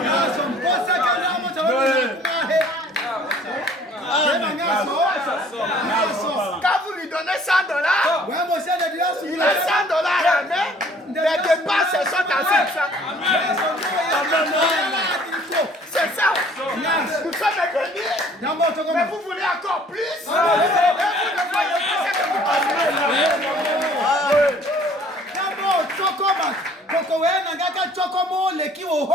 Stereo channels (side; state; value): both; normal; correlation 0.55